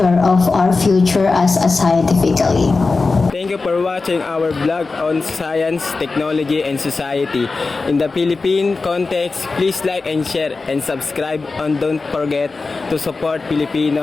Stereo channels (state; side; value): quieter; right; 4.0 dB